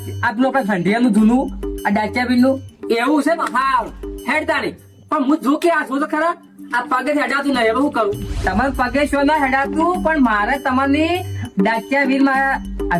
પેલું આપણે ખંડિયાનું જૂનું આ ડાચિયાબીન નું એવું છે ને. હા હેડ તારી પણ હું જોકી આ છું તો ખરા આ પગે હેડાતું નહીં. હવે શું કરું? તમારે પગે શું ના હેડાતું પણ મારે તમારી ડાચિયા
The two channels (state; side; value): identical; both; correlation 1.00